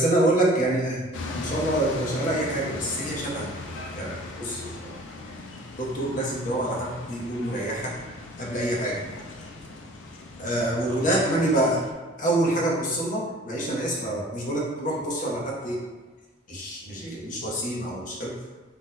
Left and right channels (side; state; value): both; normal; correlation 0.47